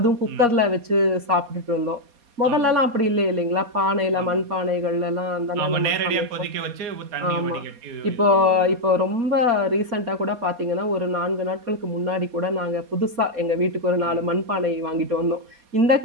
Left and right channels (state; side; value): late; left; 4.2 ms